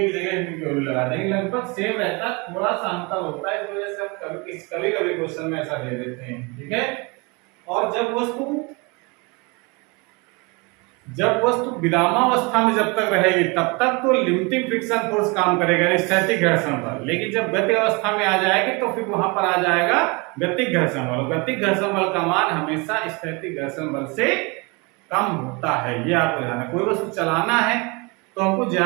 की जगह म्यू की वैल्यू लगा देंगे, लगभग सेम रहता है, थोड़ा सा अंतर होता है, इस वजह से हम कभी कभी क्वेश्चन में ऐसा दे देते हैं, ठीक है। और जब वस्तु विरामावस्था में जब तक रहेगी तब तक तो लिमिटिंग फ्रिक्शन फोर्स काम करेगा, स्थैतिक घर्षण बल। लेकिन जब गति अवस्था में आ जाएगी तो फिर वहां पर आ जाएगा गतिक घर्षण बल। गतिक घर्षण बल का मान हमेशा स्थैतिक घर्षण बल से कम होता है, ये आपको ध्यान है। कोई वस्तु चलाना है तो हमको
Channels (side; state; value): left; quieter; 28.4 dB